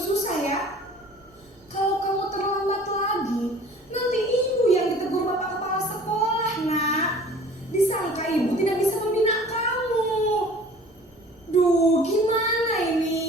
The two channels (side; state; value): both; normal; correlation 0.47